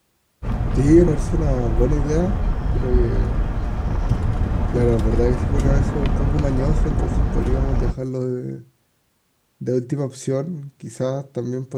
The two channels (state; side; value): identical; both; correlation 1.00